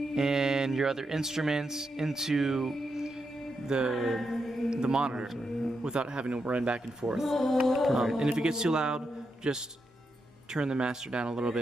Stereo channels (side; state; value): both; normal; correlation 0.84